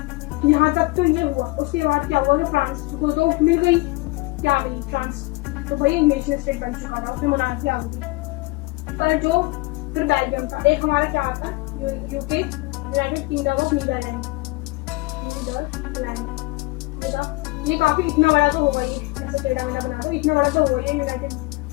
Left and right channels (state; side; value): quieter; right; 23.4 dB